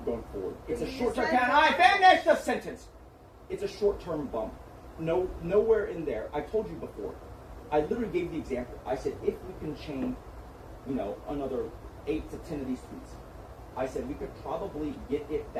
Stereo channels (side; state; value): both; identical; correlation 1.00